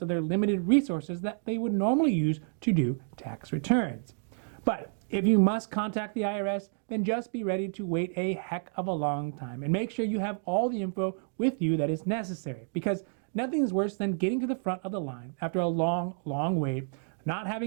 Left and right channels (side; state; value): left; silent; digital silence